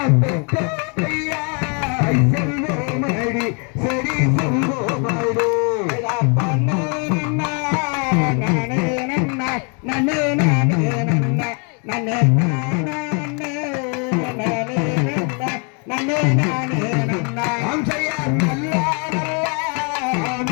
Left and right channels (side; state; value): right; quieter; 36.3 dB